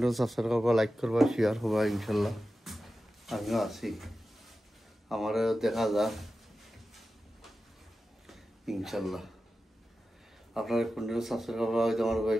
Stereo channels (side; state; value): both; normal; correlation 0.93